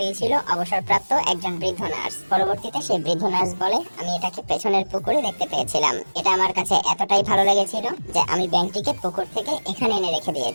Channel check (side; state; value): both; inverted; correlation -1.00